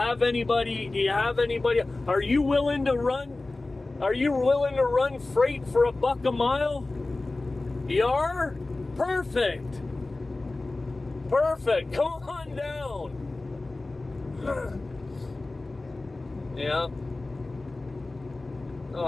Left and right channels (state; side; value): quieter; right; 3.1 dB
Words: anybody? Are you willing to run freight for $1 a mile? You are? Perfect. Come on down. Yeah.